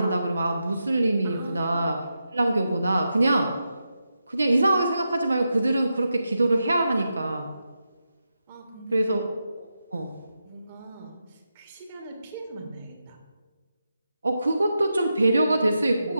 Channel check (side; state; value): both; inverted; correlation -0.87